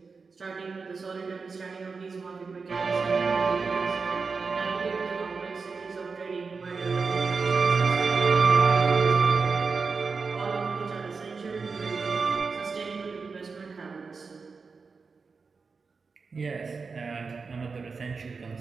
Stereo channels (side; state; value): left; quieter; 4.7 dB